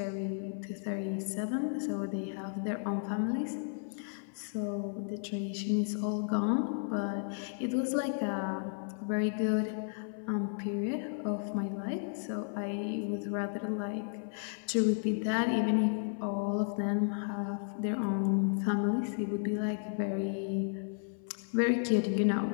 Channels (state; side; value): silent; right; 55 dB below the other